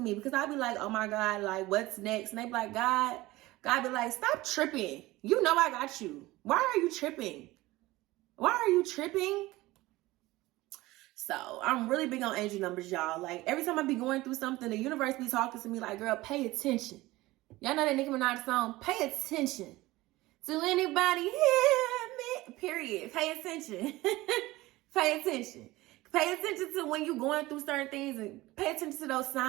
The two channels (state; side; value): quieter; left; 19.0 dB